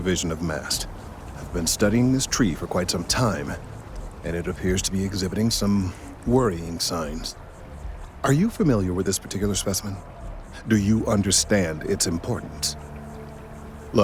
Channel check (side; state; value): both; identical; correlation 1.00